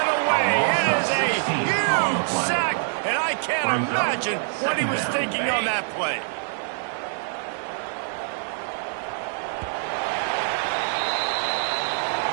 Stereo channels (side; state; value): left; silent; digital silence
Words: away. It is a huge sack, and I can't imagine what he was thinking on that play.